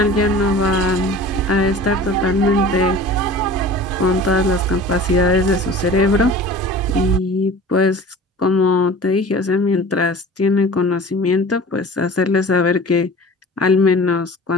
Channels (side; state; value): both; normal; correlation 0.40